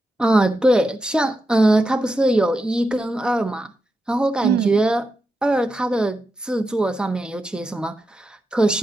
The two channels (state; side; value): normal; both; correlation 0.88